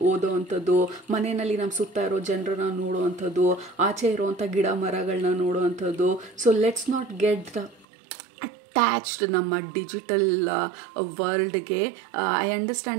ಓದೋ ಅಂಥದ್ದು, ಮನೆಯಲ್ಲಿ ನಮ್ಮ ಸುತ್ತ ಇರೋ ಜನರನ್ನ ನೋಡೋ ಅಂಥದ್ದು, ಆಚೆ ಇರೋವಂಥ ಗಿಡ ಮರಗಳನ್ನ ನೋಡೋ ಅಂಥದ್ದು. So let's not get attached ನಮ್ಮ ಡಿಜಿಟಲ್ ವರ್ಲ್ಡ್ಗೆ. ಐ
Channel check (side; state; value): left; drops out; at 7.9 s